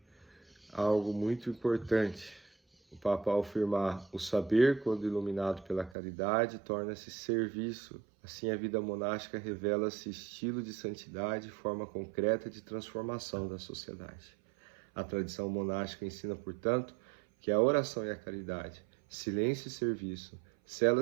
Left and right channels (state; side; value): drops out; left; at 6.0 s